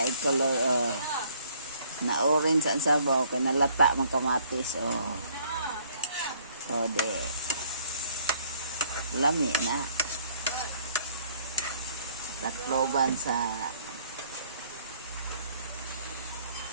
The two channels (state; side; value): inverted; both; correlation -0.61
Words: color. Na orange ang sabaw. Kaya nalata mga kamatis. De. Lami na. Takloban sa